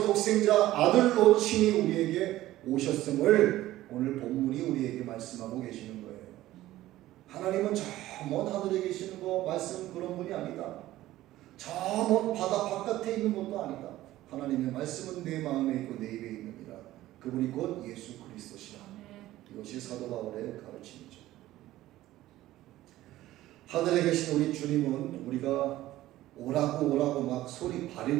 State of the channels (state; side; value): quieter; left; 15.4 dB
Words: 독생자 아들로 친히 우리에게 오셨음을 오늘 본문이 우리에게 말씀하고 계시는 거예요. 하나님은 저 먼 하늘에 계시는 거 말씀 그런 분이 아니다. 저 먼 바다 바깥에 있는 것도 아니다. 하나님의 말씀은 내 마음에 있고 내 입에 있느니라. 그분이 곧 예수 그리스도시라. 이것이 사도 바울의 가르침이죠. 하늘에 계신 우리 주님은 우리가 오라고 막 소리